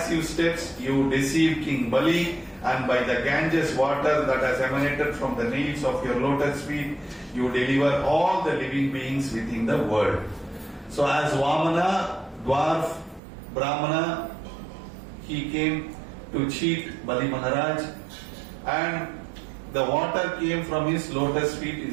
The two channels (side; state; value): left; drops out; at 13.2 s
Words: steps you deceive King Bali, and by the Ganges water that has emanated from the nails of your lotus feet, you deliver all the living beings within the world. So as Vamana, dwarf, Brahmana, he came to cheat Bali Maharaj, and the water came from his lotus feet